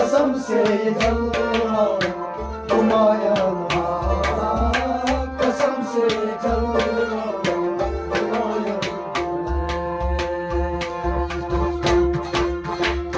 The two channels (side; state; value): both; identical; correlation 1.00